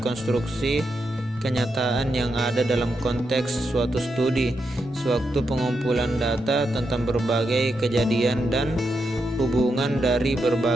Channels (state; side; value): normal; both; correlation 0.84